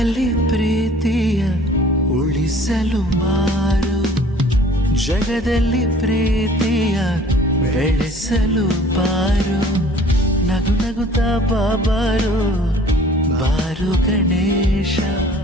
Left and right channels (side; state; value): both; normal; correlation 0.51